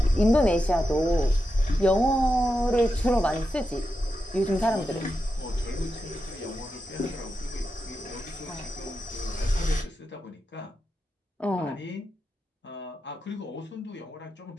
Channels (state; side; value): normal; both; correlation 0.88